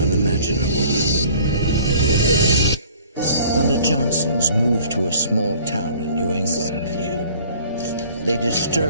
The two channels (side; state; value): both; inverted; correlation -0.52